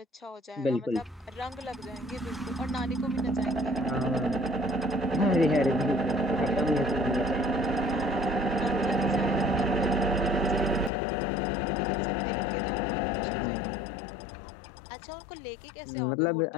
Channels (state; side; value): drops out; right; at 10.9 s